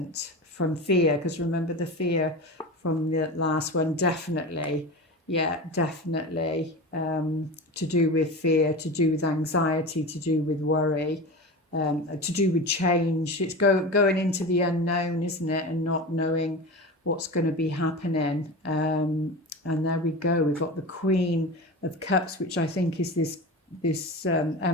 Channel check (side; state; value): both; normal; correlation 0.28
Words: from fear, because remember the fear from the last one, definitely. Yeah, definitely. To do with fear, to do with anxiety, to do with worry, to do with change. It's going into the unknown, isn't it? And not knowing what's going to be happening. And there we go. We've got the Queen of Cups, which I think is this